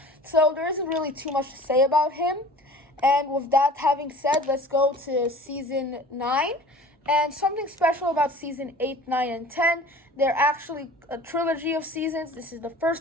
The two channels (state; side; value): normal; both; correlation 0.43